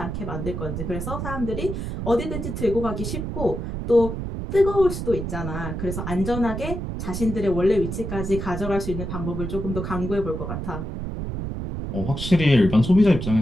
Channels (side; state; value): right; noise; rumble, 5 dB below the sound